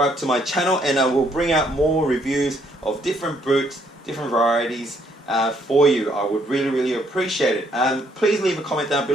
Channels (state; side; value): normal; both; correlation 0.69